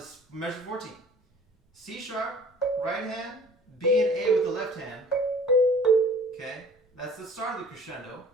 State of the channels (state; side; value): normal; both; correlation 0.49